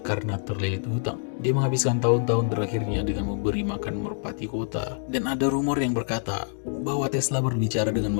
karena terlilit hutang. Dia menghabiskan tahun-tahun terakhirnya dengan memberi makan merpati kota. Dan ada rumor yang berkata bahwa Tesla berbicara dengan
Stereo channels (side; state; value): right; silent; digital silence